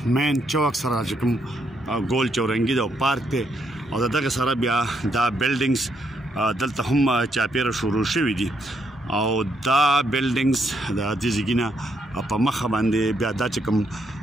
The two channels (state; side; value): normal; both; correlation 0.76